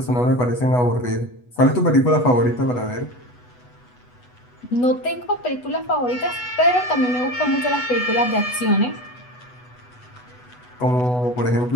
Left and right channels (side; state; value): right; late; 8.1 ms